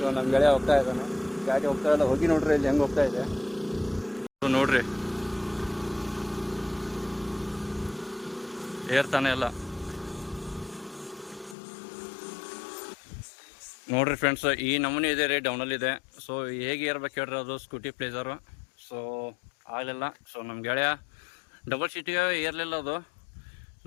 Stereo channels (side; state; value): right; drops out; at 11.6 s